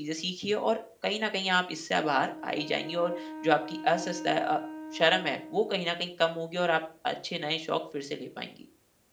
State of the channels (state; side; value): identical; both; correlation 1.00